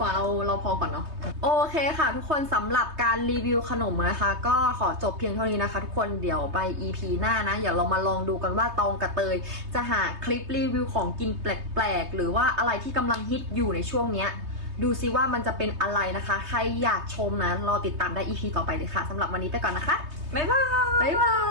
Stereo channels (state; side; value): late; left; 3.2 ms